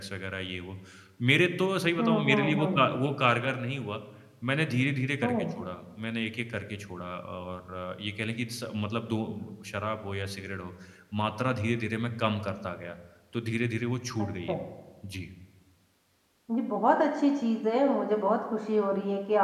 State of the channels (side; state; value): both; identical; correlation 1.00